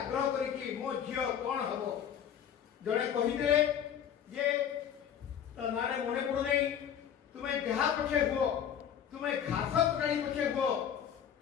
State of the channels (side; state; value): right; quieter; 8.9 dB